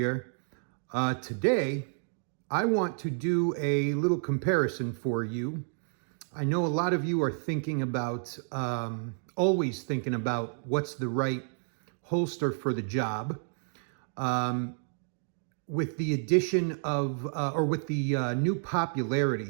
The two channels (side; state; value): left; silent; digital silence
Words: Today, I want to do a little comparison for you. I know a lot of you are thinking about, always thinking about what's the right holster for the job. With the addition of, or with the new